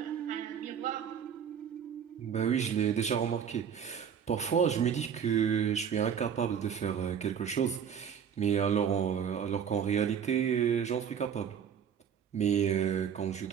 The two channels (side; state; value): left; quieter; 8.0 dB